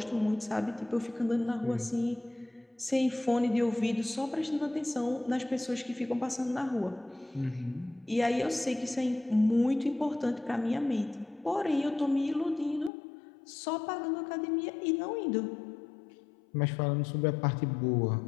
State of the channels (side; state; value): right; drops out; at 12.9 s